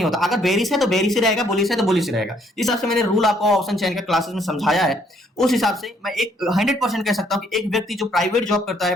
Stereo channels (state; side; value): normal; both; correlation 0.67